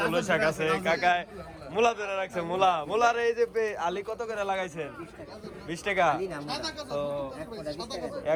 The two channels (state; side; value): identical; both; correlation 1.00